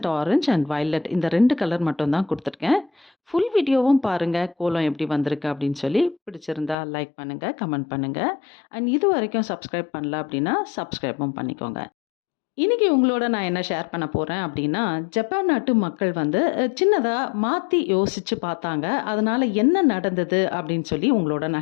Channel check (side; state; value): right; drops out; at 6.8 s